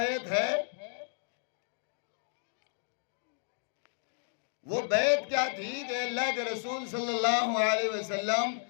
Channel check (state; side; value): silent; right; digital silence